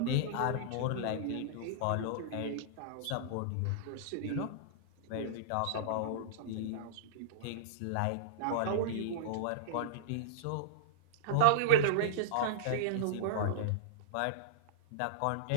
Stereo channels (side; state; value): both; different; correlation -0.02